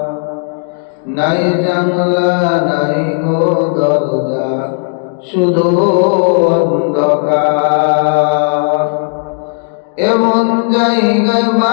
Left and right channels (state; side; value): silent; right; digital silence